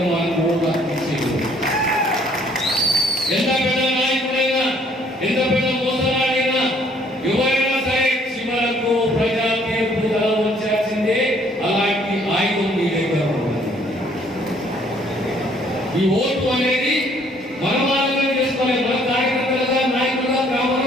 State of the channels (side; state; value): both; normal; correlation 0.62